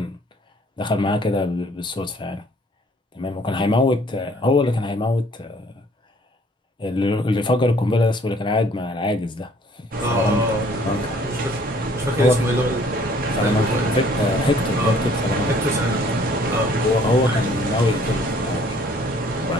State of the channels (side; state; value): both; normal; correlation 0.58